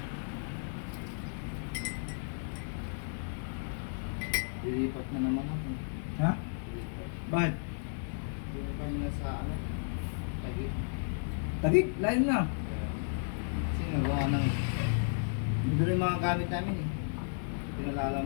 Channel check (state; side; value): silent; right; digital silence